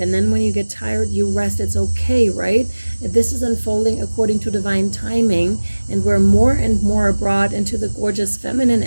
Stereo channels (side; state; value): both; inverted; correlation -1.00